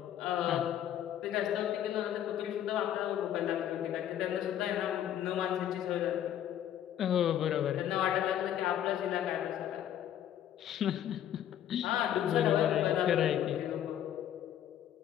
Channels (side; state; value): right; quieter; 10.8 dB